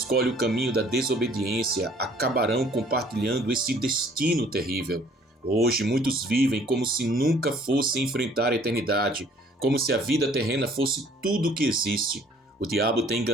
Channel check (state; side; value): normal; both; correlation 0.57